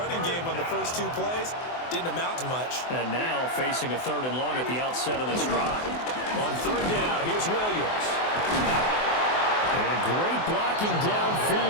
game on the first 2 plays. Didn't amount to much. And now facing a 3rd and long at the outset of this drive. On 3rd down, here's Williams. And great blocking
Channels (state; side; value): late; right; 24 ms